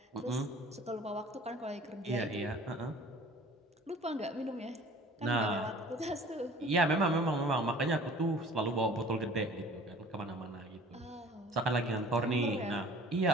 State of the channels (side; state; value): both; normal; correlation 0.47